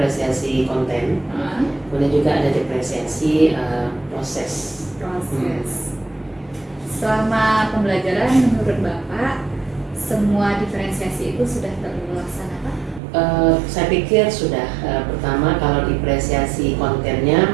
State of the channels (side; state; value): left; drops out; at 13.0 s